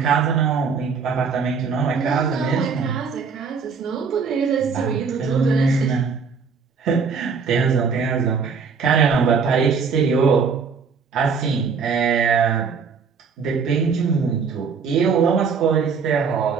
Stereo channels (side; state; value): left; quieter; 5.6 dB